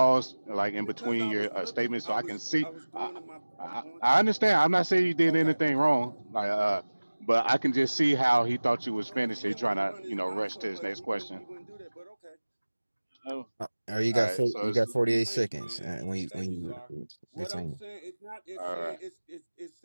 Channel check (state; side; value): inverted; both; correlation -1.00